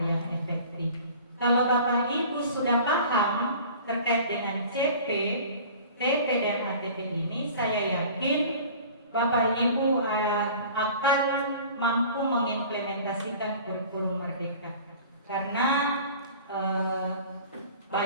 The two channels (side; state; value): both; inverted; correlation -0.44